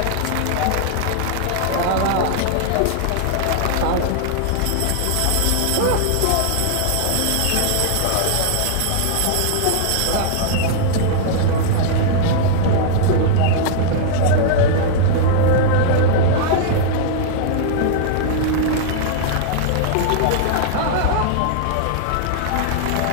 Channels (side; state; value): both; different; correlation -0.01